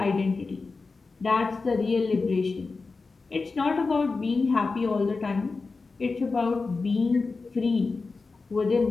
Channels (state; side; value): quieter; right; 4.1 dB